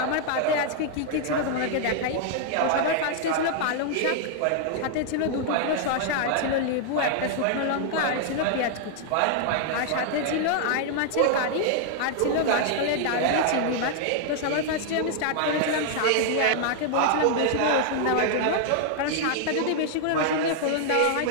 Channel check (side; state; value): both; different; correlation 0.00